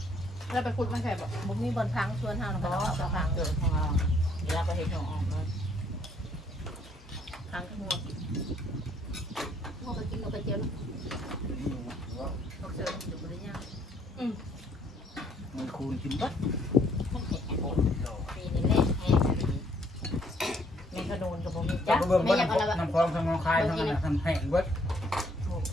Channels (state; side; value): normal; both; correlation 0.66